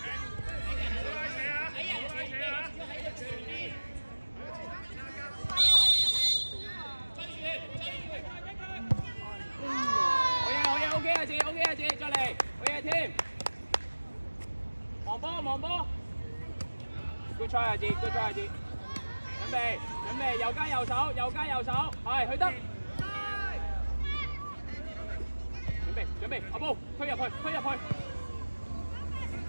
好嘢，阿哲，再嚟，好嘢添。望波 ，good try 阿哲，準備，右加右手，係去得。準備，阿波推入去，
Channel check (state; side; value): inverted; both; correlation -1.00